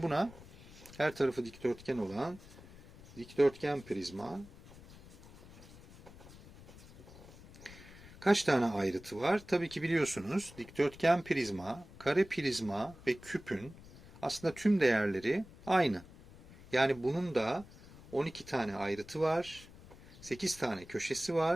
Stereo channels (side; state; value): left; noise; rumble, 19 dB below the sound